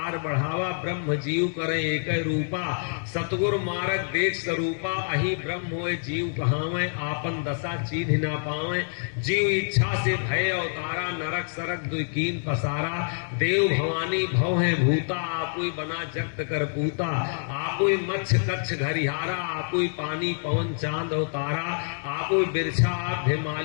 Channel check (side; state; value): right; silent; digital silence